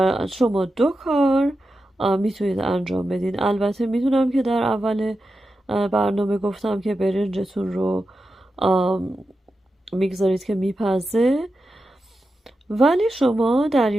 شما 2 کار میتونید انجام بدین. البته میدونم که در اول برنامه گفتم که برنجتون رو میگذارید که میپزه، ولی شما در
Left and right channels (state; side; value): normal; both; correlation 0.90